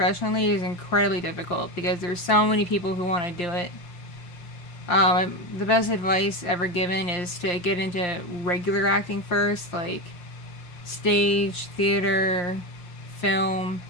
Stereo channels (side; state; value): right; late; 5.7 ms